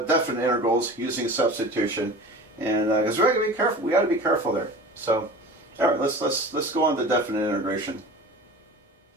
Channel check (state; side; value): normal; both; correlation 0.37